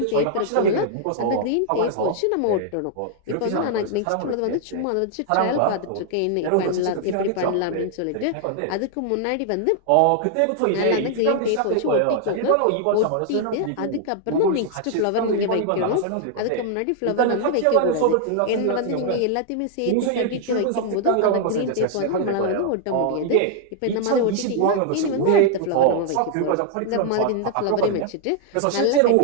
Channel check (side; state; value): both; different; correlation 0.00